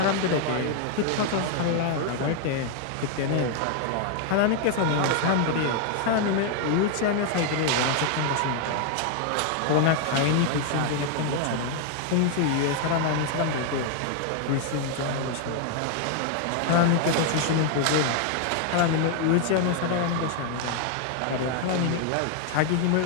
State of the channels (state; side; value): different; both; correlation 0.00